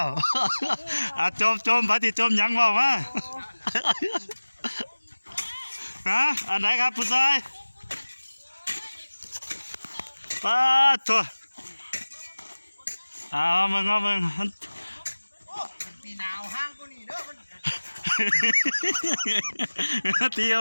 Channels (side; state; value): both; inverted; correlation -1.00